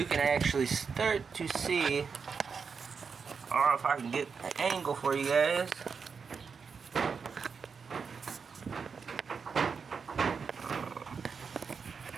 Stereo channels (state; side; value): quieter; left; 5.7 dB